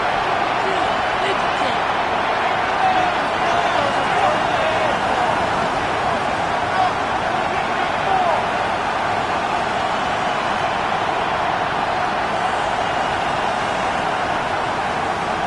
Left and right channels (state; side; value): identical; both; correlation 1.00